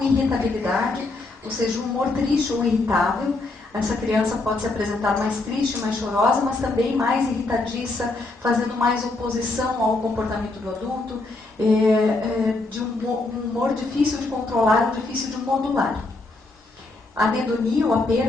ou seja, o humor triste ou irritável. Essa criança pode se apresentar mais triste, mais chorosa, mas também mais irritadiça, fazendo mais oposição ao comportamento do adulto, de um humor difícil de controlar ou difícil de modular. A anedonia ou a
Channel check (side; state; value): right; quieter; 3.2 dB